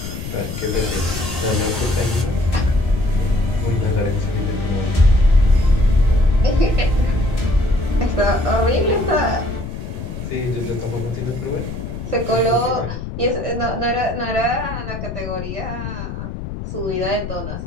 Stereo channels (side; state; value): left; noise; rumble, 8 dB below the sound